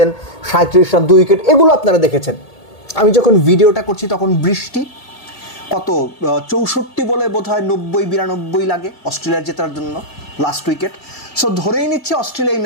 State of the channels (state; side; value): late; right; 1.9 ms